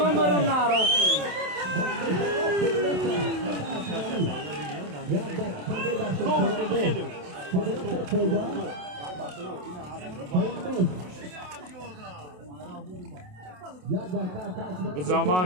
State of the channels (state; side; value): late; left; 27 ms